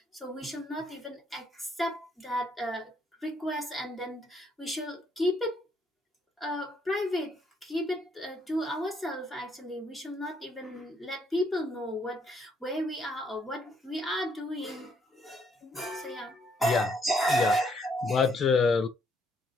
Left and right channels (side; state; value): both; normal; correlation 0.70